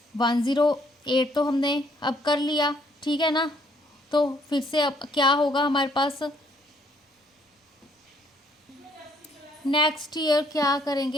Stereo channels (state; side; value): normal; both; correlation 0.66